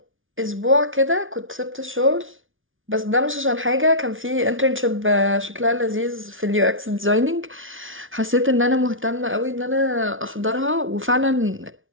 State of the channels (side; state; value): left; late; 0.57 ms